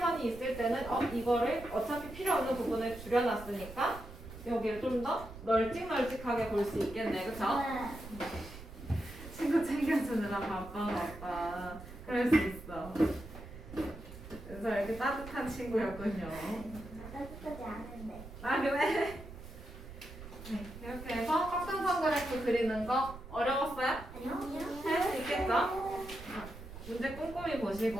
있을 때는 이거를 어차피 필요 없는 부분을 줄여놨으니까 여기를 좀 더 널찍널찍하게 볼 수 있겠네, 그쵸? 네. 친구 챙겨주느라 바빠졌다. 그럴 수 있어. 그래서 이렇게 따뜻한 친구였군요. 따뜻하지 않은데. 아, 그래? 네, 이렇게 해서 꽉상선 그래프 그리는 거 어려웠어요? 아니요. 할 수 있겠죠? 문제 꼼꼼히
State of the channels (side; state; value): right; noise; rumble, 14 dB below the sound